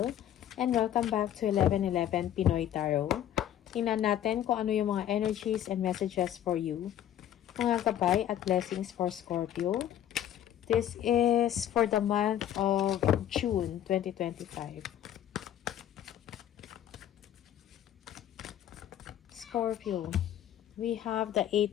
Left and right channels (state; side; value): quieter; right; 11.1 dB